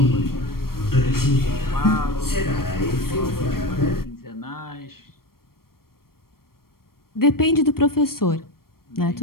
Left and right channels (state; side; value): late; right; 0.93 ms